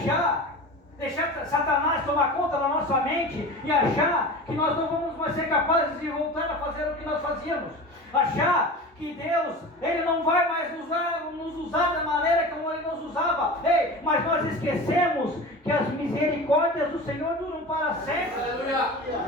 deixar Satanás tomar conta da nossa mente e achar que nós não vamos mais ser capazes de voltar a fazer o que nós fazíamos. Achar que Deus, Ele não vai mais nos usar da maneira como Ele nos usava. Ei, mas nós esquecemos que as misericórdias do Senhor duram para sempre.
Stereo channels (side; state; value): both; normal; correlation 0.33